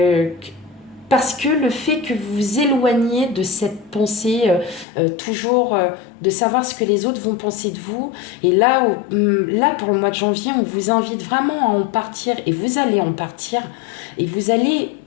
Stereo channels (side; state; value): right; drops out; at 4.9 s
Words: Parce que le fait que vous vous éloignez de cette pensée toujours de savoir ce que les autres vont penser de vous, et là pour le mois de janvier, on vous invite vraiment à en partir, et vous allez en partir, et vous allez